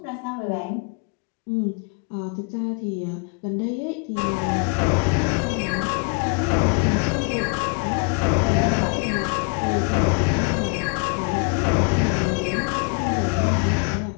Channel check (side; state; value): right; quieter; 32.4 dB